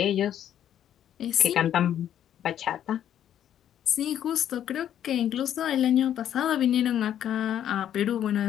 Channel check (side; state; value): right; quieter; 10.4 dB